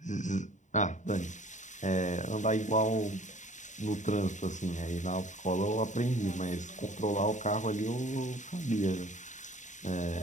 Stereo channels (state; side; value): late; right; 0.35 ms